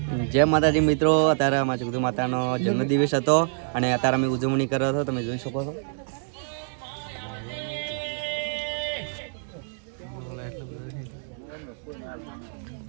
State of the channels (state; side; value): silent; left; 61 dB below the other